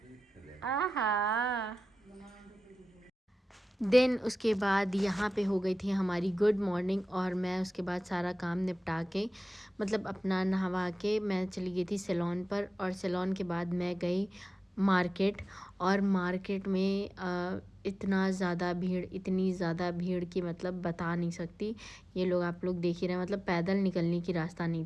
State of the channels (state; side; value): normal; both; correlation 0.95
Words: आहा। देन उसके बाद यहाँ पे हो गई थी हमारी गुड मॉर्निंग और मैं उसके बाद सारा काम निपटा के, मतलब अपना नहवा के मैं चली गई थी सैलून पर। और सैलून के बाद मैं गई मार्केट। और मार्केट में इतना ज़्यादा भीड़, इतनी ज़्यादा भीड़ की मतलब बता नहीं सकती। ये लोग आप लोग देख ही रहे हैं, मतलब पैदल निकलने की रास्ता नहीं